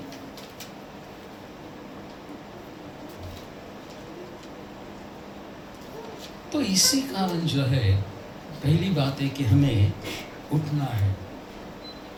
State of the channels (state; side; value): identical; both; correlation 1.00